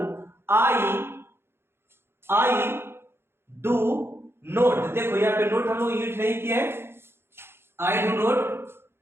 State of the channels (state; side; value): late; left; 0.11 ms